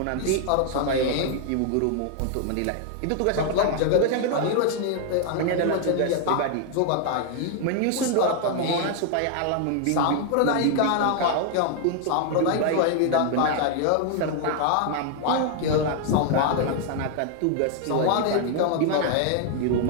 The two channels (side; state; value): both; different; correlation 0.00